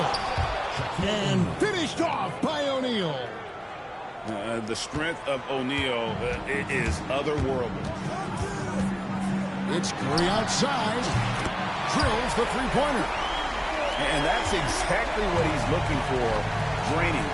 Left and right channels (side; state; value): both; identical; correlation 1.00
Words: And finished off by O'Neal. The strength of O'Neal is otherworldly. It's Curry outside. Drills the 3-pointer. And that's exactly what he's looking for, draining